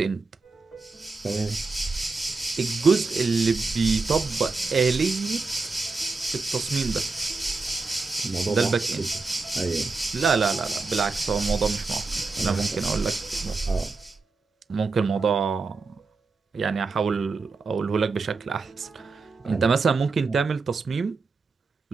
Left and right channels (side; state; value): left; quieter; 4.1 dB